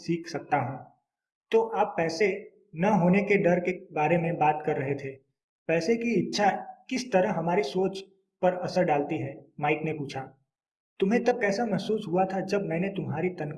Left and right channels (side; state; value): both; identical; correlation 1.00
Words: सकता हूँ। तो आप पैसे न होने के डर के बारे में बात कर रहे थे। पैसे की इच्छा किस तरह हमारी सोच पर असर डालती है? माइक ने पूछा। तुम्हें तब कैसा महसूस हुआ था जब मैंने तुम्हारी